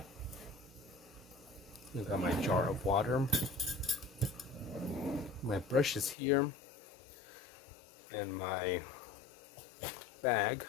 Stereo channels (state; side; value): drops out; right; at 6.2 s